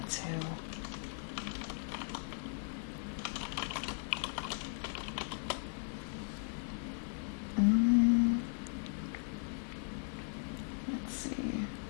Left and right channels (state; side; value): silent; right; 53 dB below the other